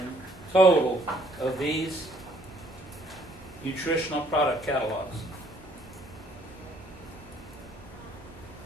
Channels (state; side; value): normal; both; correlation 0.63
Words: total of these nutritional product catalogs.